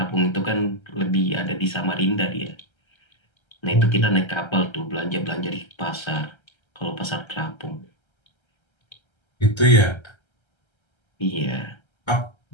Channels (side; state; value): right; late; 1.3 ms